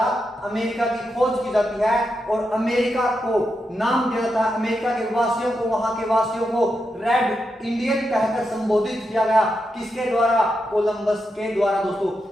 अमेरिका की खोज की जाती है और अमेरिका को नाम दिया जाता है। अमेरिका के वासियों को, वहां के वासियों को रेड इंडियन कहकर संबोधित किया गया। किसके द्वारा? कोलंबस के द्वारा दोस्तों।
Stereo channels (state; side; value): normal; both; correlation 0.85